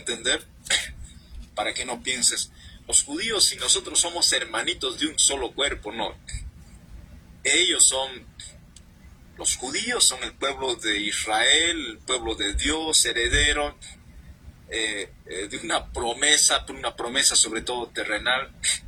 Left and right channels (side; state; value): both; identical; correlation 1.00